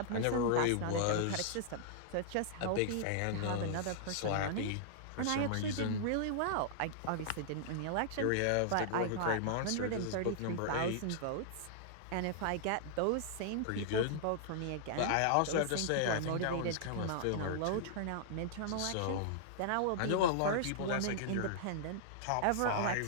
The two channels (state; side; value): different; both; correlation -0.01